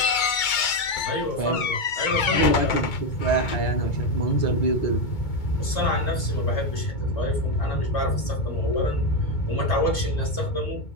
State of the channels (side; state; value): right; late; 2.2 ms